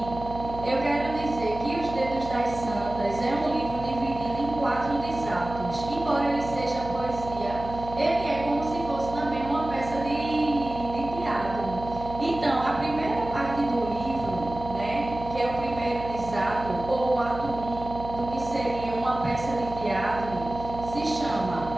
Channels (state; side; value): noise; right; hum, 11 dB below the sound